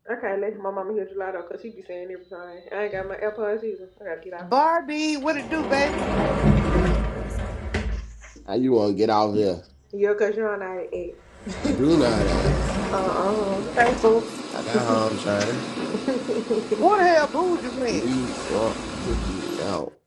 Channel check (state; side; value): identical; both; correlation 1.00